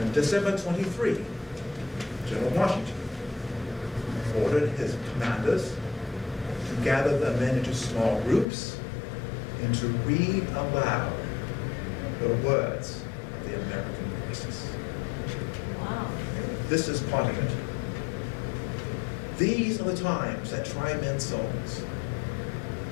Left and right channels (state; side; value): drops out; right; at 8.5 s